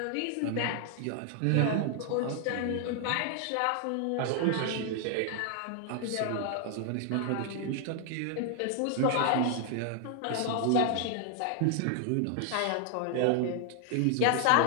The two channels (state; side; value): different; both; correlation 0.00